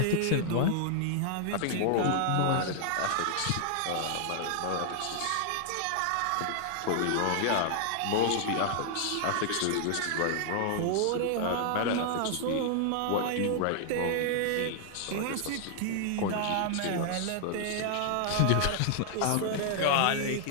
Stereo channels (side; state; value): both; different; correlation 0.00